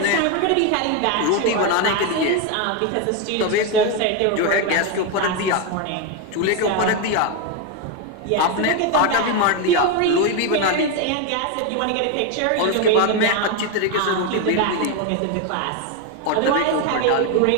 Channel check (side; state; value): both; different; correlation 0.02